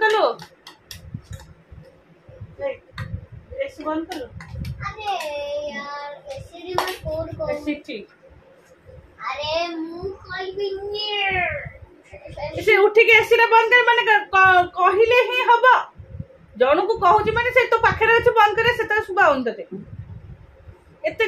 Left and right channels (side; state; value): both; identical; correlation 1.00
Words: कर लो ऐसे बंद कर लो अरे यार ऐसे रिमोट कोड को ऐसे ठीक अरे मुंह खोल भी इसे उठी के एसी रे बंद कर माने कहिले ही हबो जण को कहूची माने से तो पाखरे अछि बंद करे से त सुबा होन तते एते